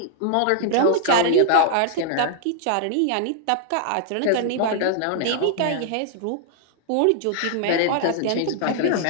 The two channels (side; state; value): both; different; correlation -0.01